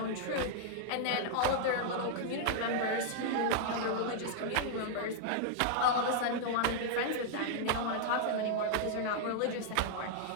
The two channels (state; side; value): different; both; correlation -0.01